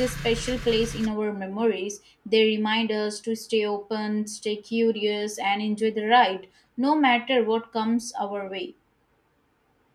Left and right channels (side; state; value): both; identical; correlation 1.00